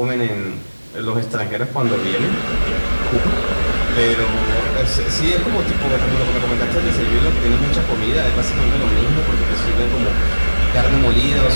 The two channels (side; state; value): both; inverted; correlation -1.00